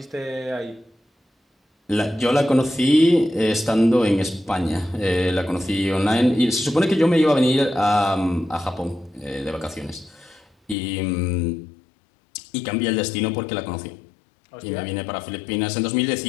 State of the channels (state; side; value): drops out; right; at 10.8 s